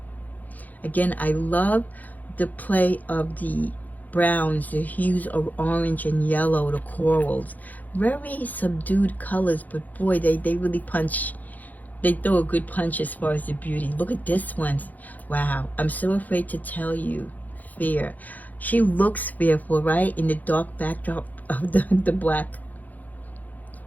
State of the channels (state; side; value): late; right; 0.081 ms